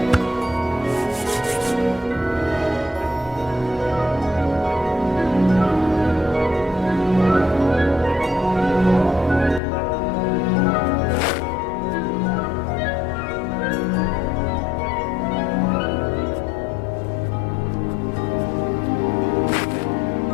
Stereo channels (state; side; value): drops out; right; at 9.6 s